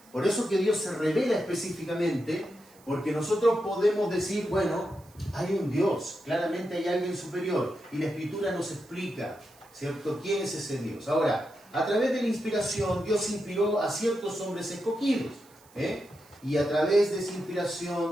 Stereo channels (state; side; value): noise; right; hiss, 27 dB below the sound